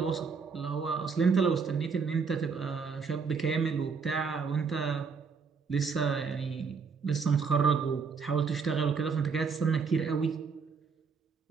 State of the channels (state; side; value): quieter; left; 5.4 dB